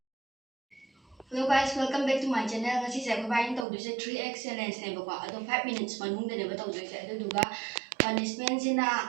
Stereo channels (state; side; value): drops out; left; at 3.7 s